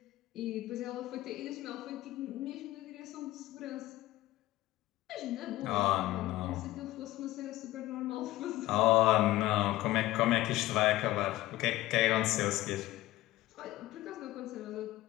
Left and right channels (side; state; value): right; quieter; 16.7 dB